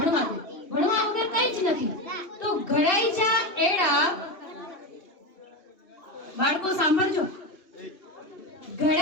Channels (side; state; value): right; late; 2.8 ms